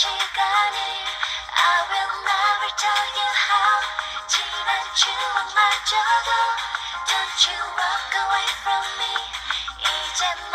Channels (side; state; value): both; identical; correlation 1.00